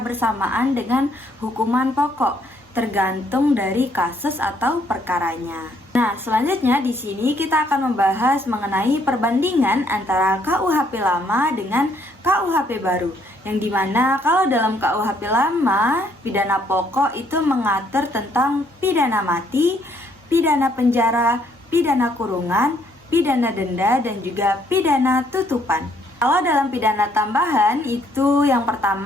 dengan hukuman pokok, tergantung dari kasus atau perkaranya. Nah, selanjutnya di sini kita akan membahas mengenai perbandingan antara KUHP lama dengan KUHP baru. Yang dimana kalau dalam KUHP lama, pidana pokok itu mengatur tentang pidana mati, pidana penjara, pidana kurungan, pidana denda, dan juga pidana tutupan. Kalau dalam pidana tambahan itu yang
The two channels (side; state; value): both; normal; correlation 0.68